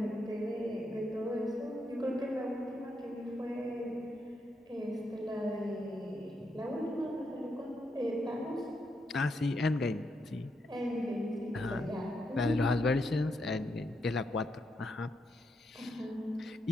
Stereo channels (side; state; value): both; normal; correlation 0.81